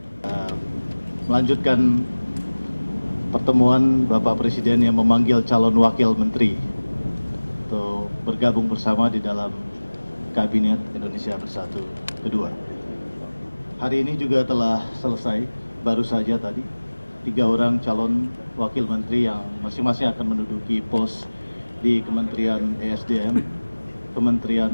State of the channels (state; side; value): inverted; both; correlation -1.00